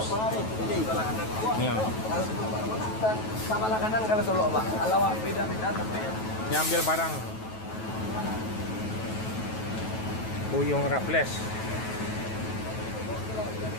Ya. Sama kanan kalau solo, Pak. Kalau beda-beda tapi Nyambil barang. Buyung Raffles.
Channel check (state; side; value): late; right; 9.2 ms